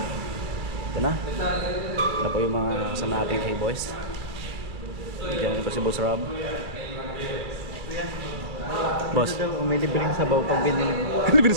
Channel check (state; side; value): late; left; 2.5 ms